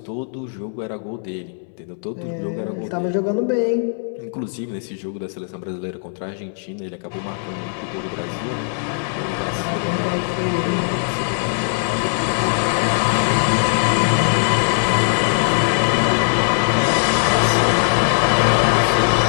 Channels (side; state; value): right; silent; 66 dB below the other